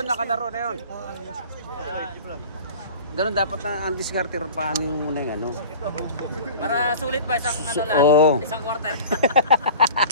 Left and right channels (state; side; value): inverted; both; correlation -0.40